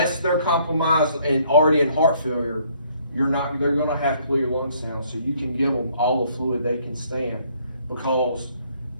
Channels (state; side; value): inverted; both; correlation -0.64